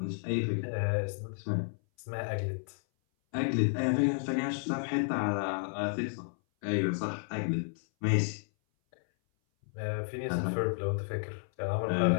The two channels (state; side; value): silent; right; 56 dB below the other